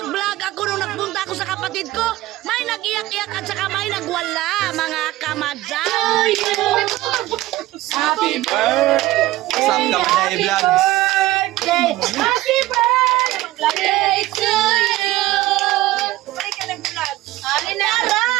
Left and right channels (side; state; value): left; quieter; 16.8 dB